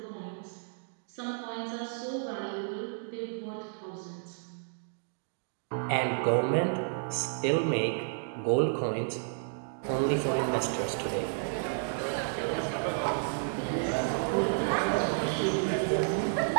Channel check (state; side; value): silent; left; digital silence